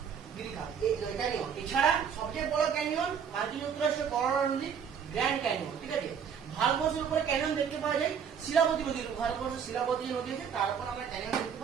গিরিখাত ক্যানিয়ন। এছাড়া সবচেয়ে বড় ক্যানিয়ন মার্কিন যুক্তরাষ্ট্রের কলোরাডো নদী গ্র্যান্ড ক্যানিয়ন, ঠিক আছে। ভারতবর্ষের উপরে ক্যানিয়ন দেখতে পাওয়া যায় শিলাবতী নদীর, ভারতবর্ষের শিলাবতী নদী আছে তার উপর আমরা ক্যানিয়ন দেখতে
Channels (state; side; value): quieter; left; 7.4 dB